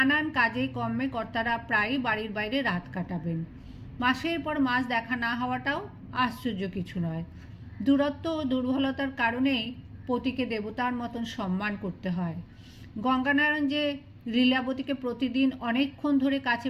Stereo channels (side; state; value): both; identical; correlation 1.00